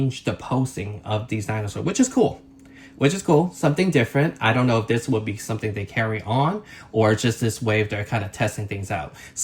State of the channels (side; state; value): both; identical; correlation 1.00